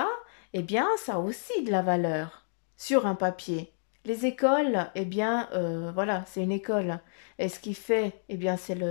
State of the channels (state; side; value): silent; right; digital silence